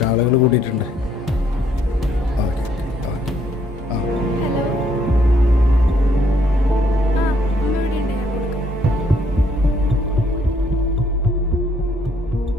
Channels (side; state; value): both; normal; correlation 0.68